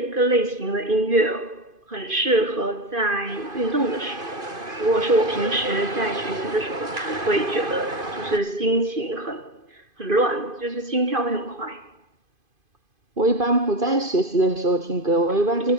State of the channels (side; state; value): left; late; 2.5 ms